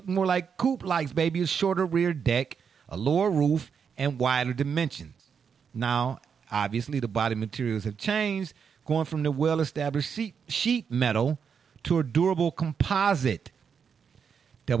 more like coupe-likes, baby. A shorter rear deck, a lower roof, and wider dimensions. Now, obviously, the body materials have changed, going from the well-established sheet metal to a durable composite.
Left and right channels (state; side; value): quieter; left; 6.7 dB